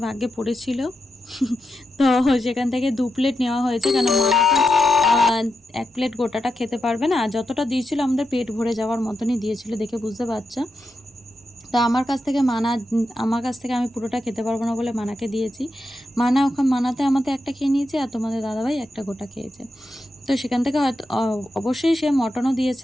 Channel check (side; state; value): both; normal; correlation 0.87